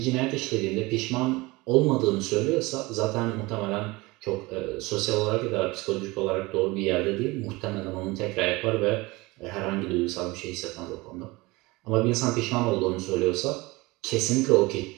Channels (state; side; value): quieter; left; 22.5 dB